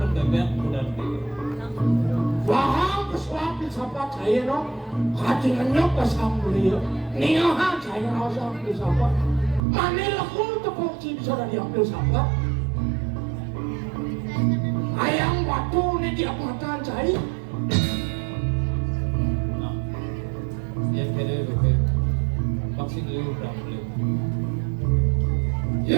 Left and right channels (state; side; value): drops out; left; at 9.6 s